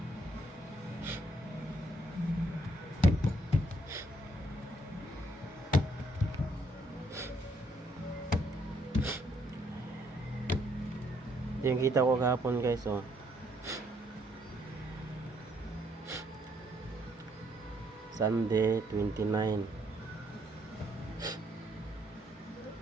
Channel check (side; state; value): both; normal; correlation 0.70